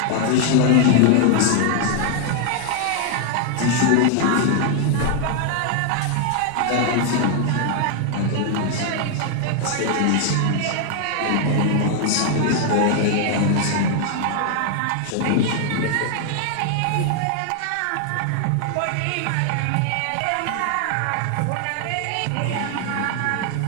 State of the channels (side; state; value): both; different; correlation 0.00